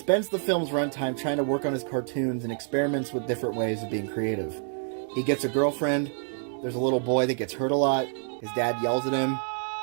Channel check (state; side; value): silent; left; 60 dB below the other